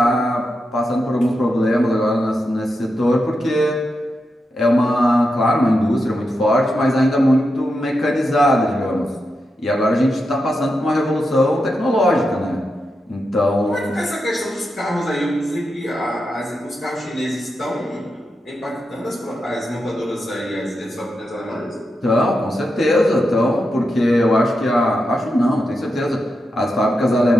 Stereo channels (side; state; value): both; normal; correlation 0.87